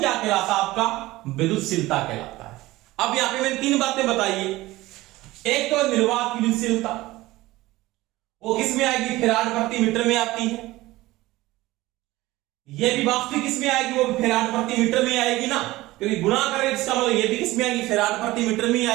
कहलाता है आपका, विद्युतशीलता कहलाता है। अब यहां पे मैंने 3 बातें बताई है। एक तो निर्वात की विद्युतशीलता, वो किस में आएगी, फैराड प्रति मीटर में आती है। ये भी वास्तविक किस में आएगी, वो फैराड प्रति मीटर में आएगी ना, क्योंकि गुणा करें इसका मतलब ये भी किस में आएगी, फैराड प्रति मीटर में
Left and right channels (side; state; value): left; quieter; 18.4 dB